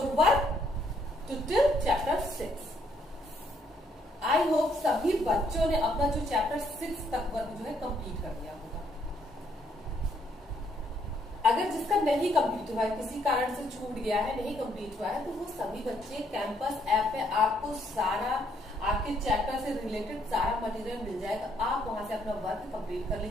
work to till chapter 6. I hope सभी बच्चों ने अपना जो chapter 6 तक work जो है complete कर दिया होगा। अगर जिसका नहीं कंप्लीट हुआ है, किसी कारण से छूट गया है, नहीं कंप्लीट हुआ है, तो वो सभी बच्चे कैंपस ऐप पे आपको सारा आपके चैप्टर से रिलेटेड सारा मटेरियल मिल जाएगा। आप वहां से अपना वर्क कंप्लीट कर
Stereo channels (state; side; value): normal; both; correlation 0.70